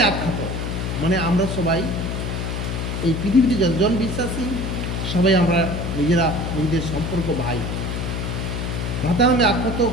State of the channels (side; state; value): left; noise; hum, 3 dB below the sound